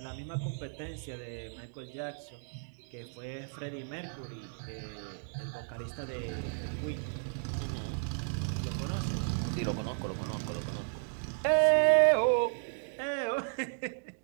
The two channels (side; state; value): left; silent; digital silence